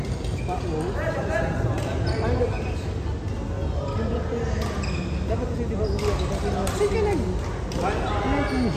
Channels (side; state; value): both; identical; correlation 1.00